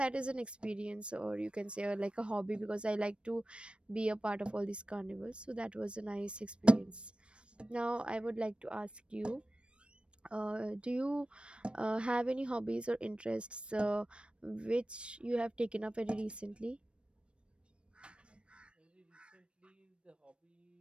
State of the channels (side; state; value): left; late; 0.058 ms